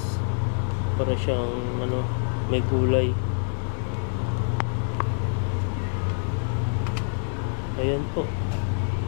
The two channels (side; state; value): right; silent; 61 dB below the other